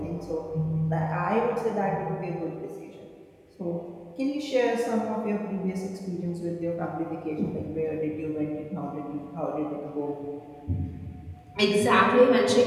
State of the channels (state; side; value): identical; both; correlation 1.00